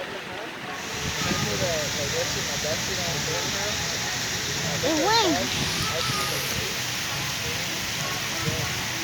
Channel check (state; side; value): identical; both; correlation 1.00